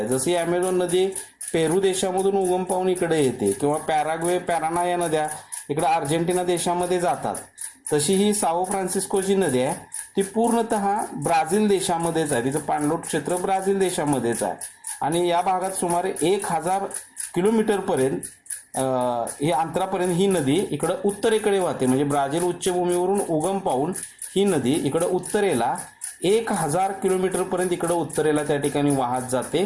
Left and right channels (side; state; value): both; identical; correlation 1.00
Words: जशी ॲमेझॉन नदी पेरू देशामधून उगम पावून इकडे येते किंवा पॅराग्वे पॅराना या नद्या इकडे अर्जेंटिना देशामध्ये जातात, तशी ही साओ फ्रान्सिस्कोची नदी आहे ती पूर्णतः ब्राझील देशामध्येच आहे. तिचं पाणलोट क्षेत्र ब्राझील देशामध्येच आहे आणि या भागात सुमारे 1000 किलोमीटरपर्यंत ही अंतरापर्यंत ही नदी इकडं उत्तरेकडे वाहते. म्हणजे ब्राझील उच्चभूमीवरून उगम पावून ही नदी इकडं उत्तरेला 1000 किलोमीटरपर्यंत इकडं उत्तरेला त्या ठिकाणी वाहत